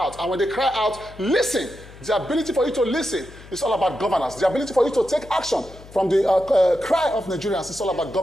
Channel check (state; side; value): noise; left; hum, 19 dB below the sound